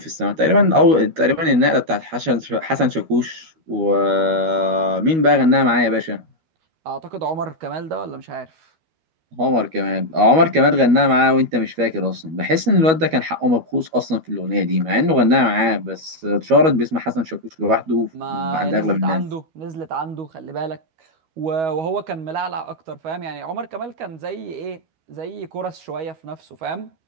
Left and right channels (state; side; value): late; left; 12 ms